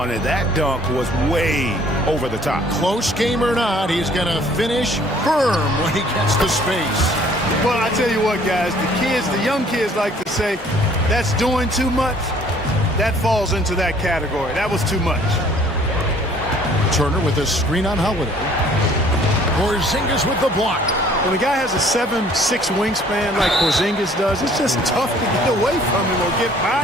it. That dunk was way over the top. Close game or not, he's going to finish firm when he gets the space. Well, I tell you what, guys, the young kids like to say, that's doing too much. That falls into that category. That was too much. Turner with a screen on Holiday. Porzingis with the block. When a guy has a 7'6" wingspan like Porzingis does, it's just tough to get away from him or get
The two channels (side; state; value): both; normal; correlation 0.57